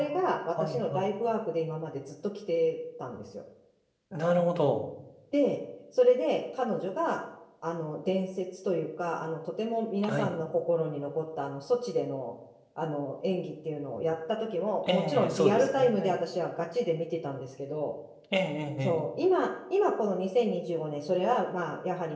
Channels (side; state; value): both; identical; correlation 1.00